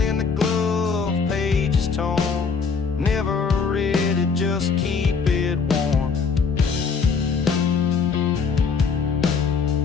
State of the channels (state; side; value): quieter; right; 5.4 dB